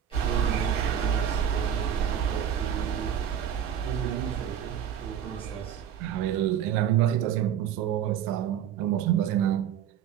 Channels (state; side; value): quieter; left; 9.3 dB